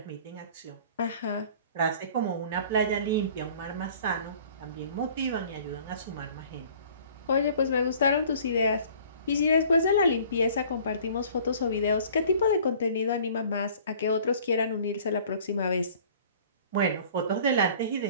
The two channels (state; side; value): inverted; both; correlation -0.50